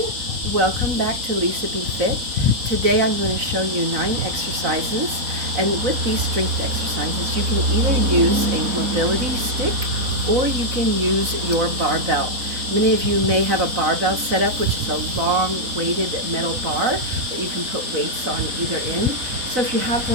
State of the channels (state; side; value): late; left; 4.0 ms